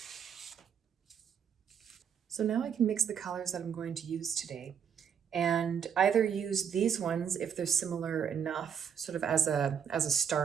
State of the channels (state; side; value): quieter; left; 7.7 dB